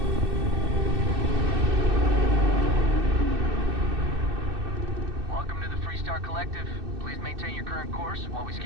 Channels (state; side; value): late; left; 2.6 ms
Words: Welcome to the Freestar Collective. Please maintain your current course while we